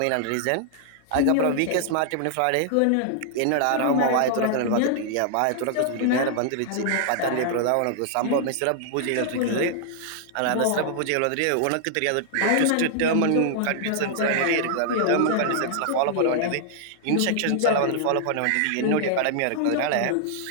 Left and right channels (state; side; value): different; both; correlation -0.01